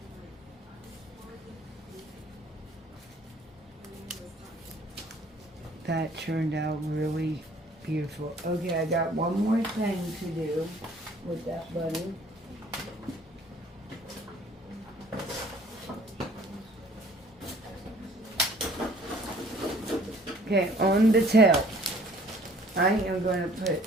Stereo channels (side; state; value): both; normal; correlation 0.55